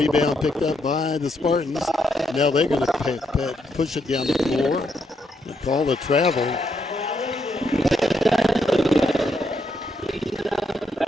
picked up by the Spartans. Now they're going to push it down the floor. They call the travel.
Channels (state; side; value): normal; both; correlation 0.77